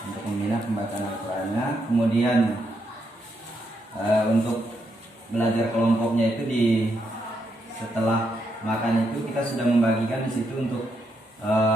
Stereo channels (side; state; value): both; normal; correlation 0.79